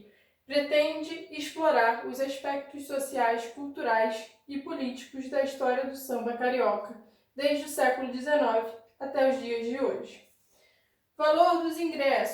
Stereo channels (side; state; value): both; identical; correlation 1.00